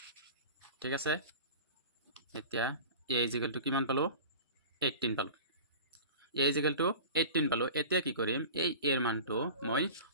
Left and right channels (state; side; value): inverted; both; correlation -0.36